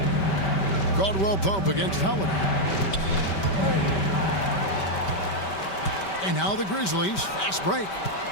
Caldwell Pope against Howard. And now the Grizzlies, fast break.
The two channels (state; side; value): late; right; 5.2 ms